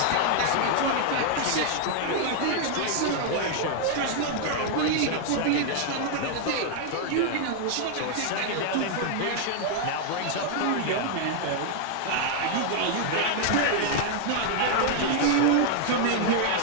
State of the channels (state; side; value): different; both; correlation 0.00